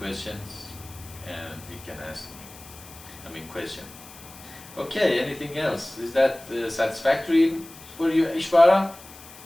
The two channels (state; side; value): noise; left; hiss, 19 dB below the sound